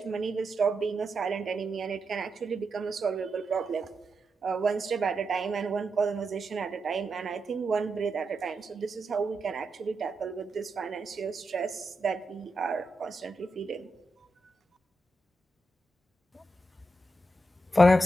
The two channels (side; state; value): both; normal; correlation 0.86